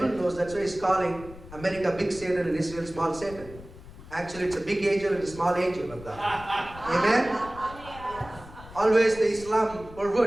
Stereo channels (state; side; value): noise; left; rumble, 17 dB below the sound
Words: knows. That's why he's calling America big Satan and Israel small Satan. Actually, it's a big angel and a small angel of God. Amen? Always the Islam